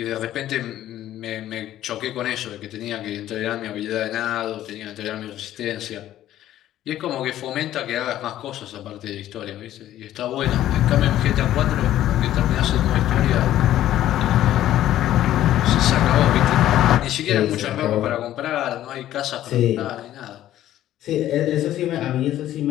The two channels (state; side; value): quieter; right; 12.9 dB